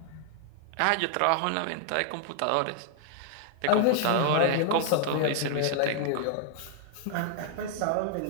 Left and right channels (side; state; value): both; different; correlation 0.00